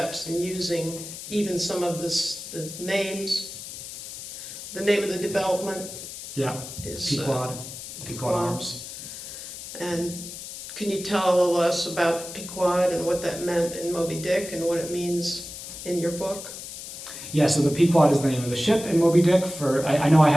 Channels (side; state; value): left; noise; hiss, 11 dB below the sound